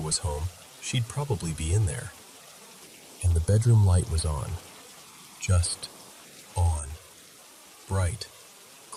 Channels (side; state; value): both; identical; correlation 1.00